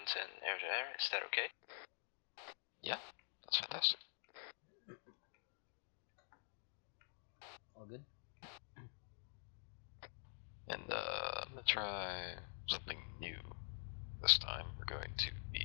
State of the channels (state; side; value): silent; right; digital silence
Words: and air-to-air. Is that okay? Yeah, that's fantastic. All good? And I'm gonna try something new this time. We're going to